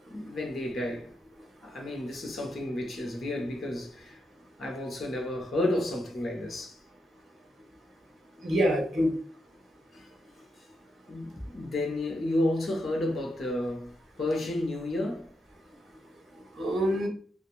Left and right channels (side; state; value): both; normal; correlation 0.83